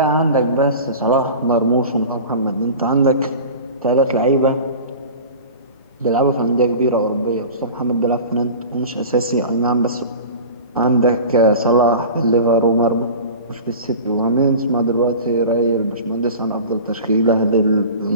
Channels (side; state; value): both; inverted; correlation -0.36